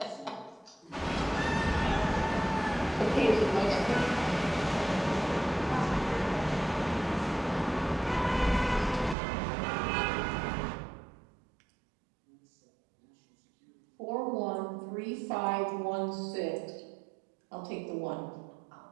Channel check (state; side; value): drops out; left; at 9.2 s